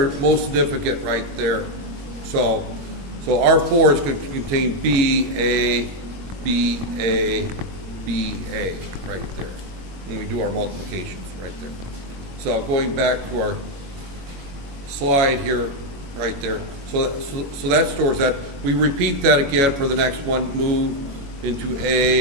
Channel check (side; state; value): left; late; 21 ms